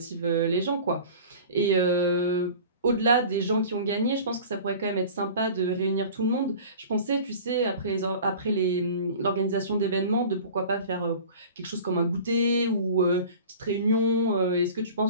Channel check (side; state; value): both; inverted; correlation -0.41